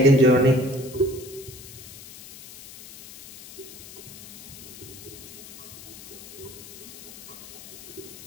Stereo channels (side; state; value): left; noise; hiss, 15 dB below the sound